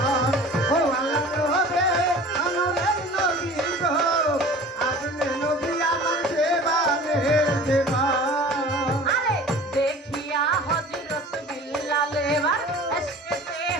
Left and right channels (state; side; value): normal; both; correlation 0.43